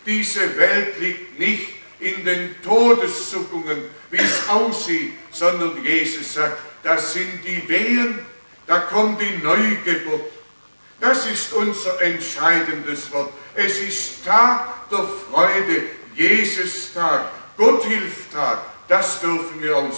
diese Welt liegt nicht in den Todeszuckungen, wie es aussieht, sondern Jesus sagt, das sind die Wehen, da kommt die Neugeburt. Das ist unser entscheidendes Wort. Es ist Tag der Freude, Jesus-Tag, Gotthilftag, das dürfen wir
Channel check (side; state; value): both; inverted; correlation -1.00